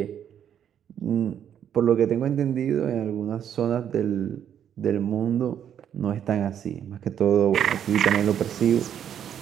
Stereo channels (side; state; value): left; quieter; 9.3 dB